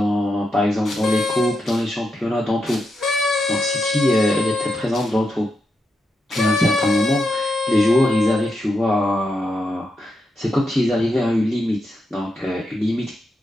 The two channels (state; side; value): normal; both; correlation 0.84